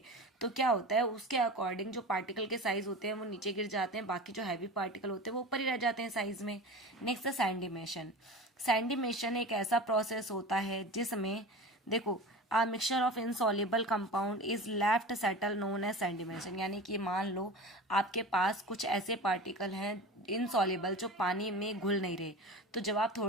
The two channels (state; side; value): normal; both; correlation 0.32